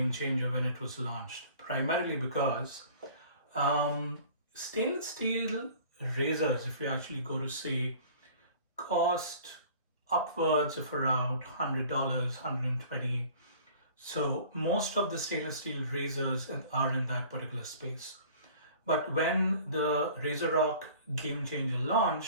changer when it was launched, primarily because stainless steel razors, if you actually go to see, cost upwards of around $100, 120. So most of the stainless steel razors are in that particular space. But when the RazoRock GameChanger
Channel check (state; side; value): inverted; both; correlation -0.47